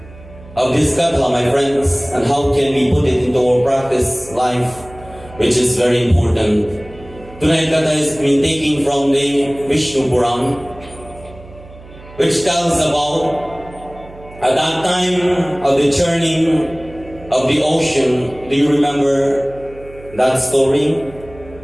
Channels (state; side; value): noise; right; hum, 20 dB below the sound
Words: of this Katha, my friends, and how can we put it into our practice life, which is very important. Tonight, Katha is being taken from the Vishnu Puran, which tells about at that time of the churning of the ocean. Do you remember that story?